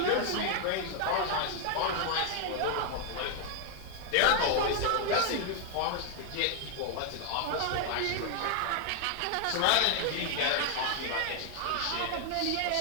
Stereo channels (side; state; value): both; different; correlation 0.00